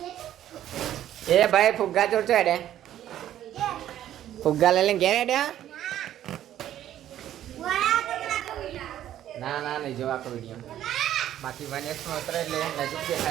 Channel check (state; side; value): quieter; left; 11.8 dB